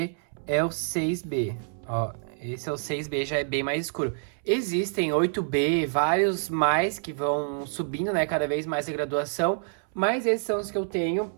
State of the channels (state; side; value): silent; left; 60 dB below the other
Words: é o 6B. Ó, esse é o 6B, já é bem mais escuro. Existem 8B, vários mais que vão subindo, né, cada vez mais a graduação. Mas esses são os que eu tenho